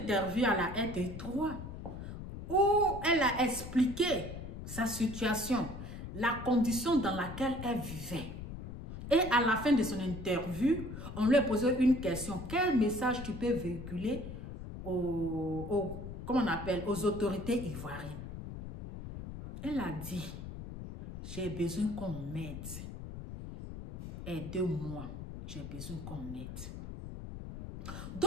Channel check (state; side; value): noise; left; rumble, 9 dB below the sound